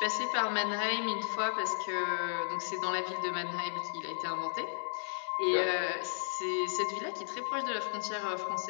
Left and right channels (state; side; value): silent; right; digital silence